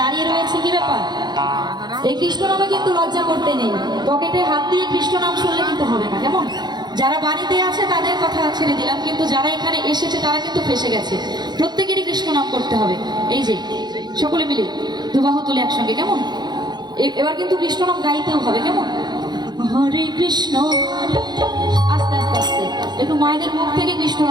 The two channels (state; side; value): late; left; 0.21 ms